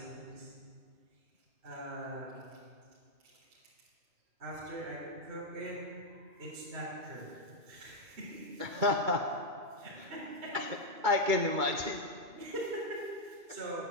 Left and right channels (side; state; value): left; late; 2.3 ms